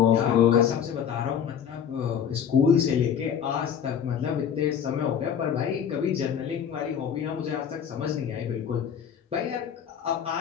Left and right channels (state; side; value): quieter; right; 8.2 dB